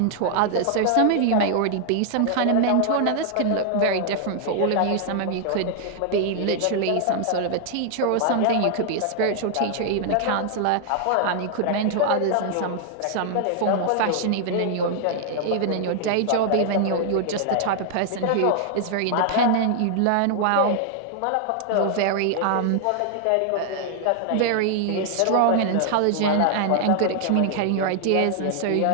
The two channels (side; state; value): both; different; correlation 0.00